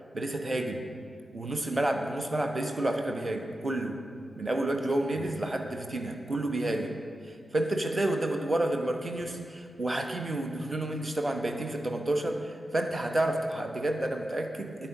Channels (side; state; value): both; normal; correlation 0.91